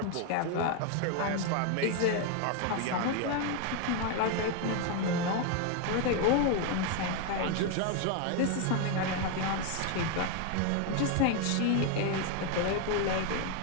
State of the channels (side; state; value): both; different; correlation 0.01